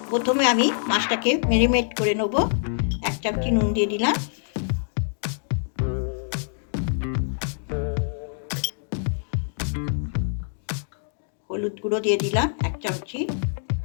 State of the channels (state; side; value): silent; right; digital silence